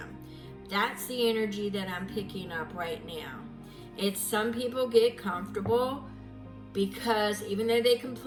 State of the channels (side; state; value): both; identical; correlation 1.00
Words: That's the energy that I'm picking up right now. It's some people get comfortable because even though they